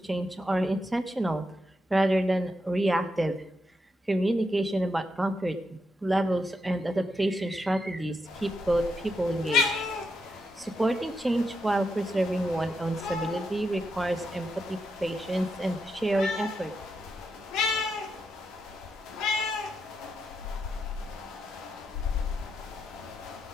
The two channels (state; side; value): normal; both; correlation 0.84